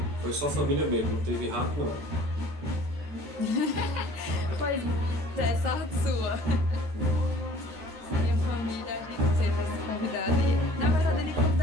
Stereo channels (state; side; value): late; left; 13 ms